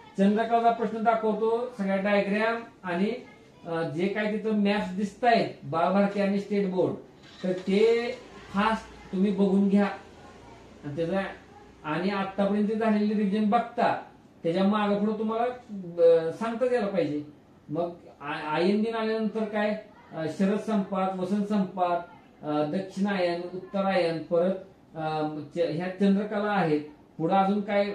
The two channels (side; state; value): both; identical; correlation 1.00